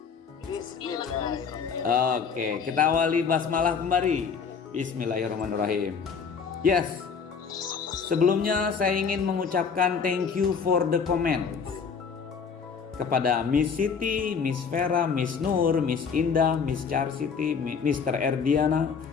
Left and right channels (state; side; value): quieter; right; 6.0 dB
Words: Oke, kita awali basmalah kembali. Bismillahirrahmanirrahim. Yes. Sebelumnya saya ingin mengucapkan thank you for the comments kepada Miss Siti, Miss Vera, Miss Nur, Miss Indah, Miss Charsiti, Mr. Erdiana,